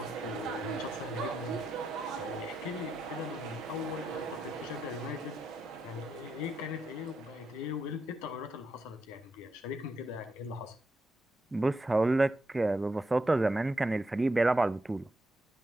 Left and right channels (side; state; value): both; normal; correlation 0.83